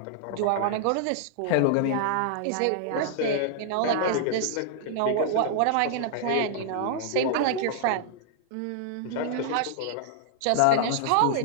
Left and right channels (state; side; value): different; both; correlation -0.01